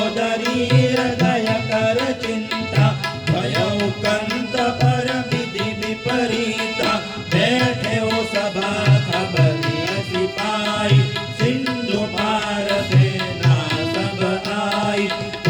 हृदय कर चिंता भयउ कंत पर विधि विपरीता बैठे हो सभा खबरिया सिपाही सिंधु पार सेना सब आई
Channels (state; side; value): identical; both; correlation 1.00